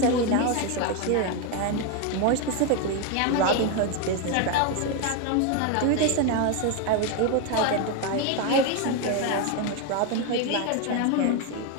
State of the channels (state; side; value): different; both; correlation 0.02